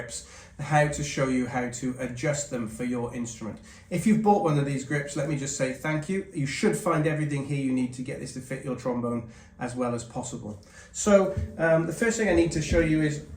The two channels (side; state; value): both; identical; correlation 1.00